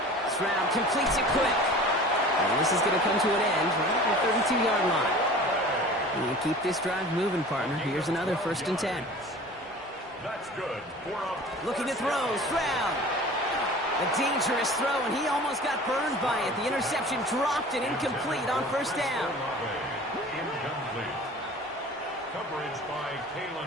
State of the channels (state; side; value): normal; both; correlation 0.42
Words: Stroud completes it quick. And this is going to come to an end right at the 32-yard line. And you keep this drive moving, partner. Here's another 1st and 10. That's good. Looking to throw, Stroud. A dangerous throw, and he almost got burned by it. The interception dropped and incomplete on 1st down. Incomplete. Coverage by